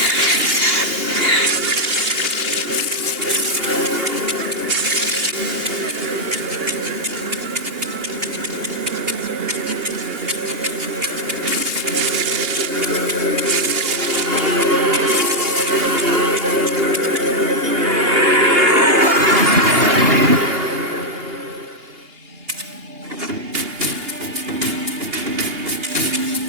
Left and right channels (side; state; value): left; late; 2.8 ms